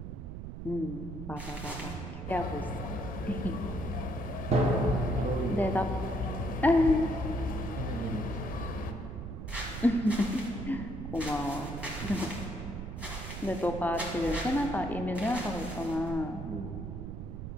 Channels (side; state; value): right; noise; rumble, 8 dB below the sound